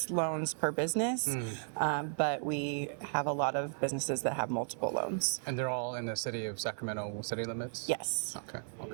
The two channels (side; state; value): left; silent; digital silence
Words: loans per business, but we have a lot of businesses that have multiple loans. And they're all in the city of Sacramento city limits? Yes.